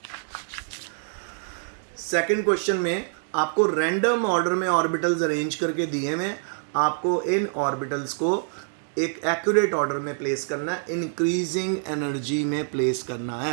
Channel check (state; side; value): silent; left; 61 dB below the other